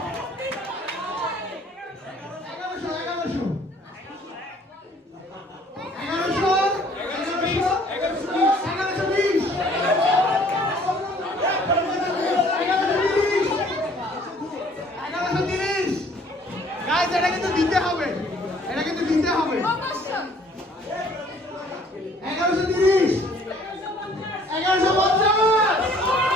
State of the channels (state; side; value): normal; both; correlation 0.57